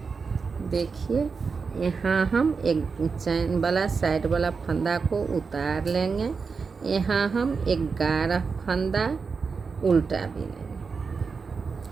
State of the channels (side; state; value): left; quieter; 5.1 dB